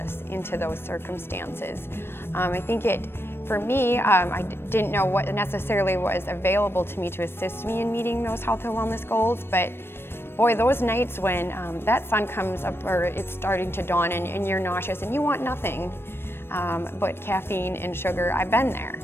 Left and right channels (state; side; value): late; right; 0.11 ms